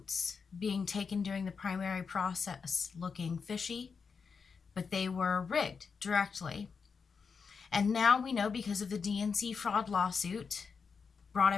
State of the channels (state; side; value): quieter; right; 5.5 dB